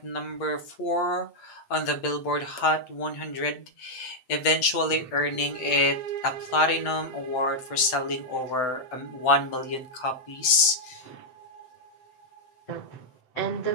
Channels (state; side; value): late; right; 7.9 ms